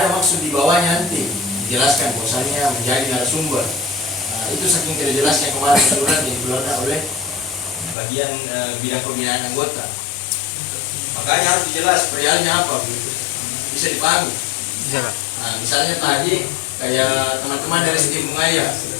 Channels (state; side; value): drops out; right; at 8.0 s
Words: maksud di bawahnya, nanti dijelaskan bahwasannya menjadi narasumber. Nah, itu saking tidak jelasnya kemarin surat yang dikeluarkan oleh bagian bidang pembinaan anggota. Makanya harus dijelas perihalnya apa begitu, bisa dipahami. Nah, misalnya tadi kayak teman-teman dari Sistem